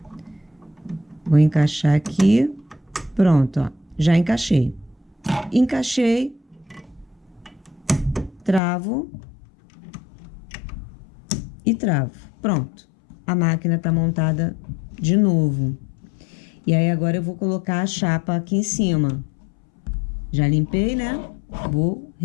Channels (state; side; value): drops out; right; at 8.6 s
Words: Vou encaixar aqui. Pronto, ó. Já encaixei. Encaixei. Travo. E travo. Pronto. A máquina tá montada de novo. E aí, agora eu vou colocar a chapa aqui em cima. Já limpei, né? Vou